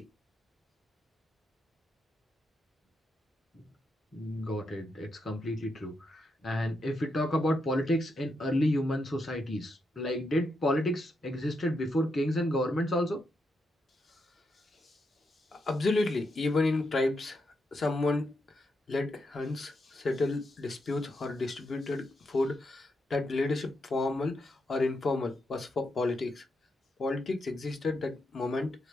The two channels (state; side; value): normal; both; correlation 0.83